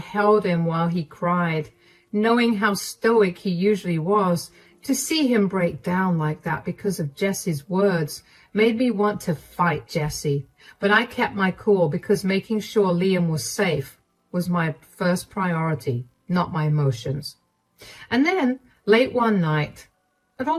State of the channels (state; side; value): identical; both; correlation 1.00